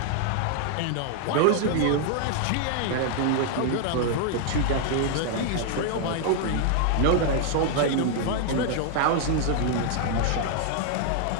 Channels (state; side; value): different; both; correlation 0.00